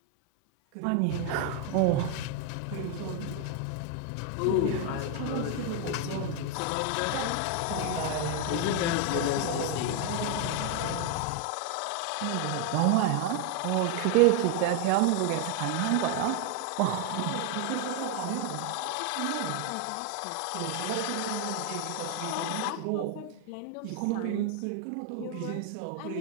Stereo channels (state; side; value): different; both; correlation 0.01